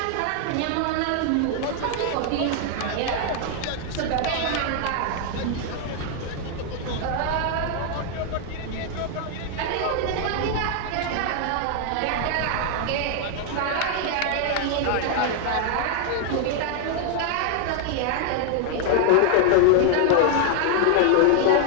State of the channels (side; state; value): both; different; correlation 0.00